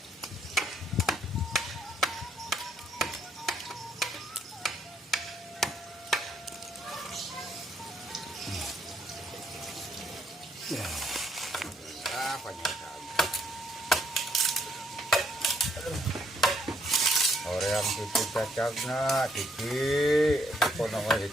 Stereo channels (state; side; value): normal; both; correlation 0.70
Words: Ya. Banyak sekali. Orang tipu cacagna, tipi, apa namanya